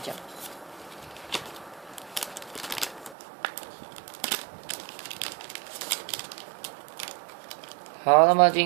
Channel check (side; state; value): left; drops out; at 3.2 s